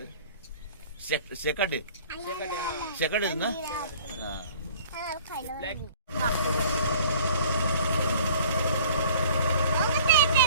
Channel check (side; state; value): both; inverted; correlation -0.50